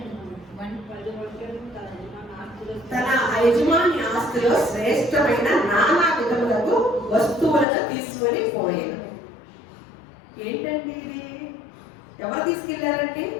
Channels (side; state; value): right; drops out; at 7.7 s